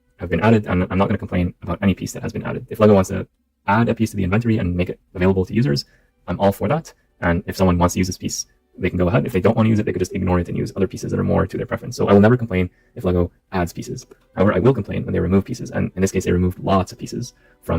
have been added, and I'm not going to complain about any piece that has been added. If LEGO wants to add a piece to the inventory and make it available to users, I'm all for that. And if someone wants to use this piece, they can go ahead. If they don't want to use it, they could just ignore it and use other pieces that are more to their preference. So I will never complain if LEGO adds pieces. However, I will complain when they remove pieces. And in this case, they removed lots of pieces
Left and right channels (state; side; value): identical; both; correlation 1.00